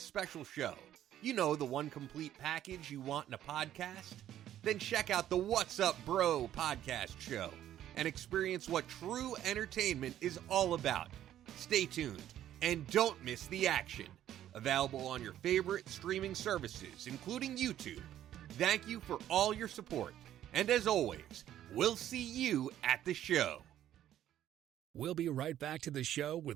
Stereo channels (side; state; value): left; quieter; 11.8 dB